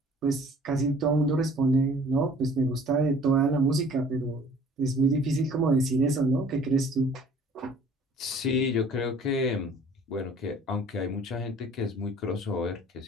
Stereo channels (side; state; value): both; normal; correlation 0.52